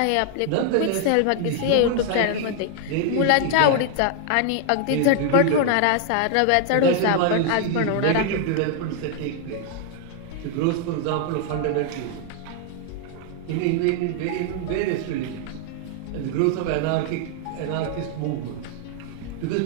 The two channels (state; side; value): different; both; correlation 0.00